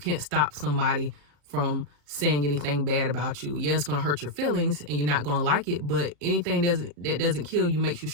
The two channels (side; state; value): left; late; 35 ms